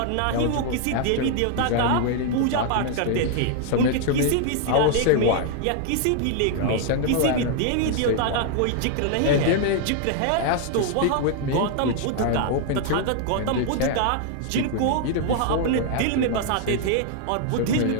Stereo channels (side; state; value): both; different; correlation 0.00